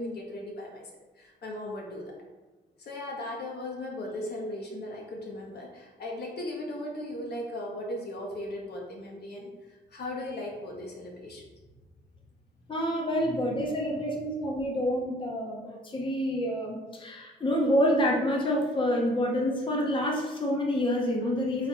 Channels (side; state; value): both; normal; correlation 0.53